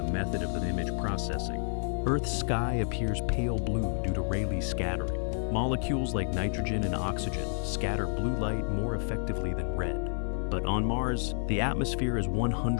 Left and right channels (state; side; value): silent; right; digital silence